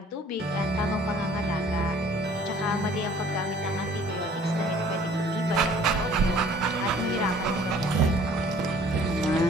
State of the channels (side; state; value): both; normal; correlation 0.54